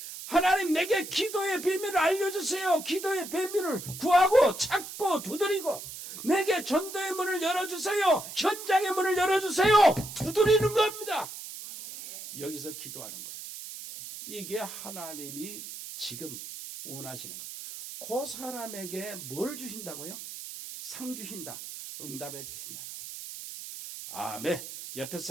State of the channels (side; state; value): right; noise; hiss, 11 dB below the sound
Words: 하나님 내게 기도의 비밀을 알려주세요. 기도의 비밀을 구하고 찾고 두드리고, 내게 전도의 문을 열어주세요. 현장의 문을 열어주세요. 두드리는 겁니다. 여기서 기도하는 거예요. 이게 하나님이 지금 원하시는 거. 그 사람에게 뭘 주신다고요? 상 주신다. 응답해 주신다는 거예요. 아멘. 옆에